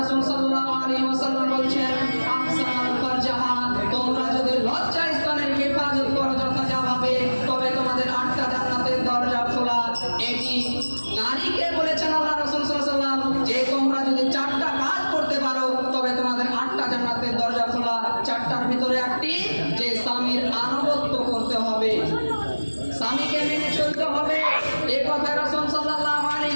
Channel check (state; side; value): inverted; both; correlation -1.00